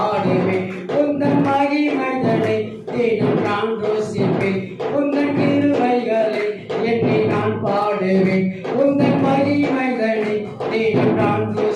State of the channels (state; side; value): identical; both; correlation 1.00